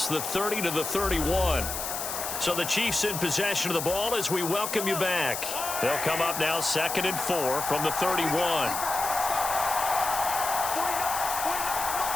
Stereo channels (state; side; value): noise; left; hiss, 5 dB below the sound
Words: the 30 to the 31. So the Chiefs in possession of the ball as we welcome you back. They'll come up now 2nd and 4 from the 31.